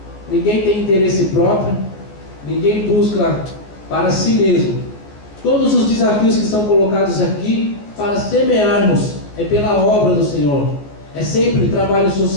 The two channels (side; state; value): right; late; 14 ms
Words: ninguém tem interesse próprio, ninguém busca para si mesmo. Todos os desafios que são colocados aqui para semearmos é pela obra do Senhor. É sempre trabalho